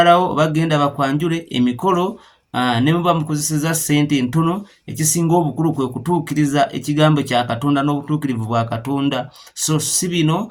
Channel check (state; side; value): identical; both; correlation 1.00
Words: oba genda bakwanjule emikolo, ne muba mukozeseza ssente entono. Ekisinga obukulu kwe kutuukiriza ekigambo kya Katonda n'obutuukirivu bwa Katonda. So si bino